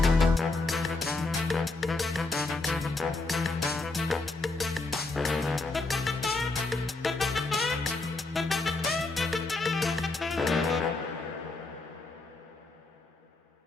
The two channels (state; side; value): quieter; right; 3.4 dB